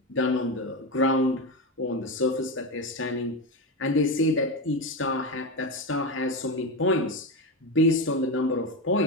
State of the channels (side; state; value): both; normal; correlation 0.16